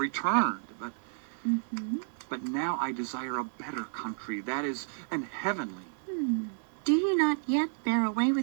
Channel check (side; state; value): left; silent; 57 dB below the other